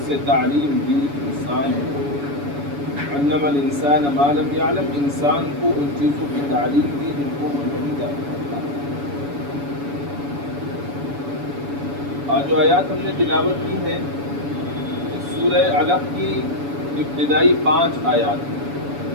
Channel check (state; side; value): late; left; 7.0 ms